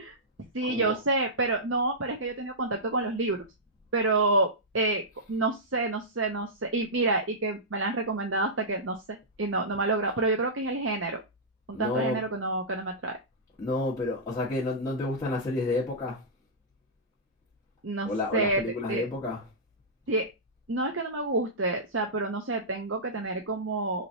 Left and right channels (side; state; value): both; normal; correlation -0.14